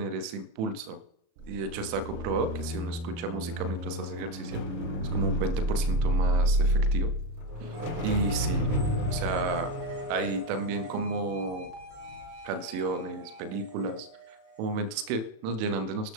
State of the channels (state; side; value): late; left; 37 ms